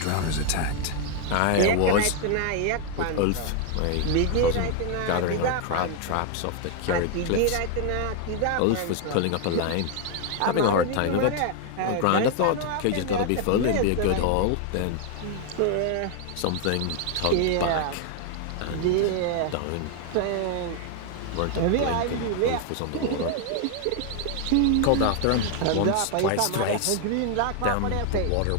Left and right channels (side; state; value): both; different; correlation 0.00